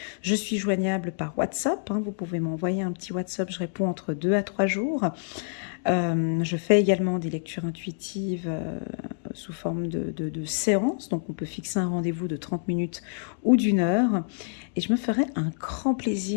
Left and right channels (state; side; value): silent; right; digital silence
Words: je suis joignable par WhatsApp. Hein. Vous pouvez m'envoyer un petit WhatsApp, je réponds entre 2 à 3 jours. Je fais également des lectures intuitives sous forme de séances, donc on peut fixer un rendez-vous de 30 minutes ou d'1 heure. Et je me ferai un grand